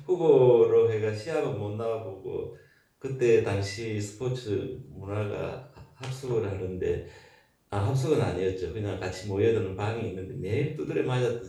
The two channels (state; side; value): identical; both; correlation 1.00